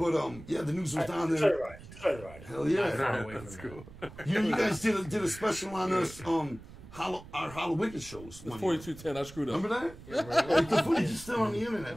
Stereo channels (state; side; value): noise; right; rumble, 17 dB below the sound